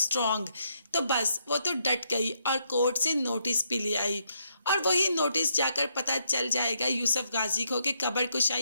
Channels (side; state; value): both; inverted; correlation -0.76